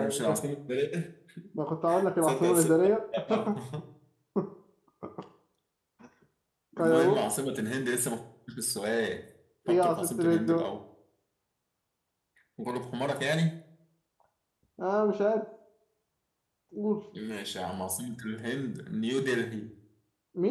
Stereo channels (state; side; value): identical; both; correlation 1.00